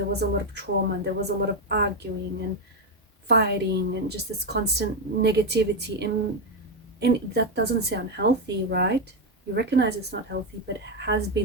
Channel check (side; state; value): both; normal; correlation 0.07